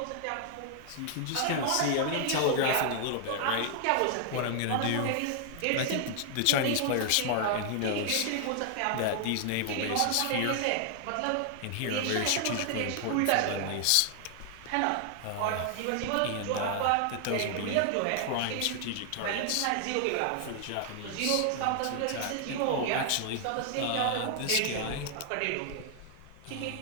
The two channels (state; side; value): different; both; correlation 0.00